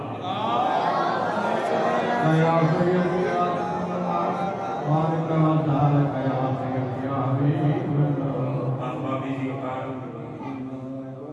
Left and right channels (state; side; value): identical; both; correlation 1.00